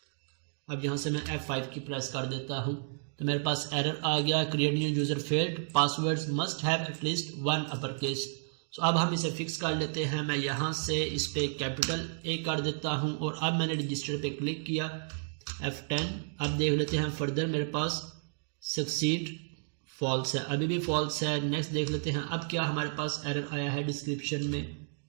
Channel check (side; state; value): left; silent; digital silence